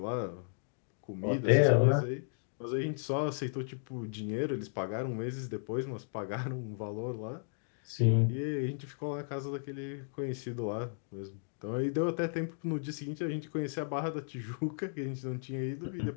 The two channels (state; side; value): silent; right; digital silence